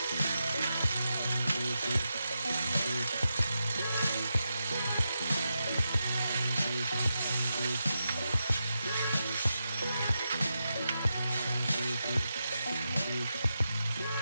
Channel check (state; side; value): inverted; both; correlation -0.88